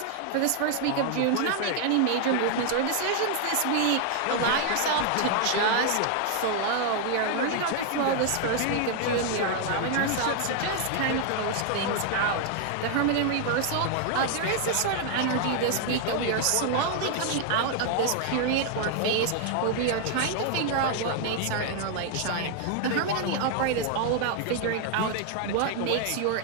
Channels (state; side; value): different; both; correlation 0.00